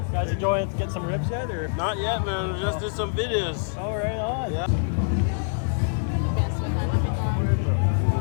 Guys enjoying getting some ribs yet? Or? Not yet, man. We just did some videos. Oh, right on. Yeah.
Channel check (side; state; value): right; silent; digital silence